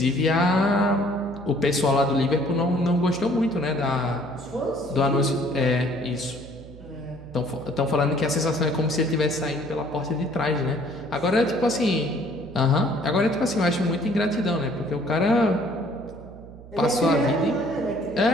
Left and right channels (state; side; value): noise; right; hum, 17 dB below the sound